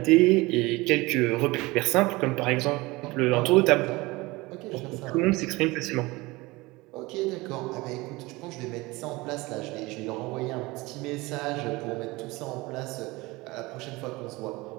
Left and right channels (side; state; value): left; quieter; 22.1 dB